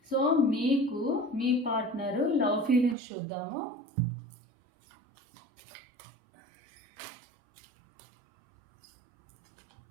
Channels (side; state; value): left; drops out; at 3.0 s